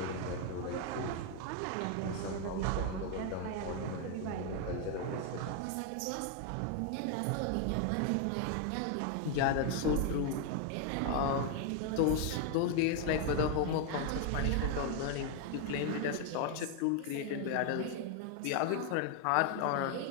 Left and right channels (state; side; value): different; both; correlation 0.01